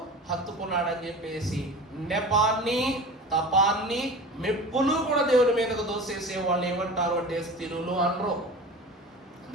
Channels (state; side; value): normal; both; correlation 0.35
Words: హత్తుకున్నాడని చెప్పేసి నెపాన్ని, తపాన్ని, మెప్పును కూడా దేవుడి మీదకు దోసేసే వాళ్ళు ఏమంటారు అంటే స్థిరులు అనరు.